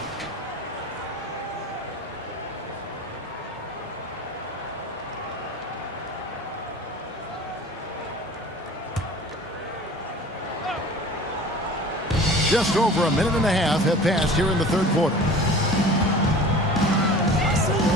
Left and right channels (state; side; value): normal; both; correlation 0.41